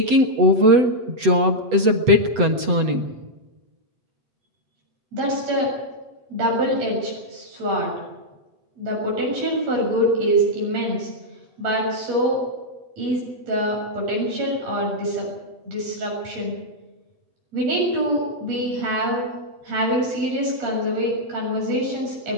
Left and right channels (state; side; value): late; left; 8.0 ms